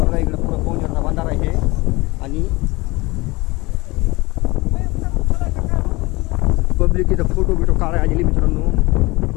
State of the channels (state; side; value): quieter; right; 22.7 dB